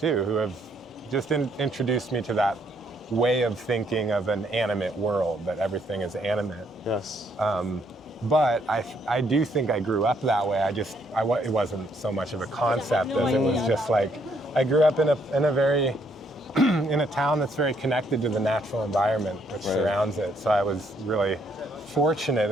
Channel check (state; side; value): normal; both; correlation 0.70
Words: who have just introduced me to that way of thinking of an animate world, that everything is animate. Yes. But I do think I grew up that way. It wasn't so much of a concept as it was just like, I grew up in a very, in a town that's very connected to the natural environment which surrounds it. So I was really fortunate